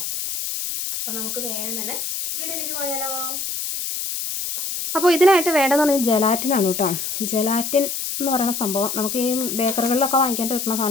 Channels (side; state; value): left; noise; hiss, 4 dB below the sound